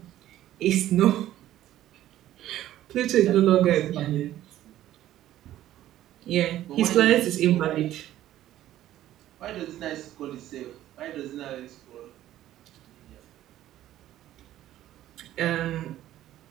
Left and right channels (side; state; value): left; quieter; 13.3 dB